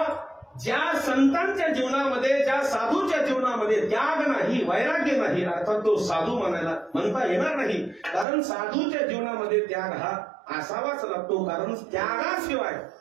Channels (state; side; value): drops out; left; at 8.2 s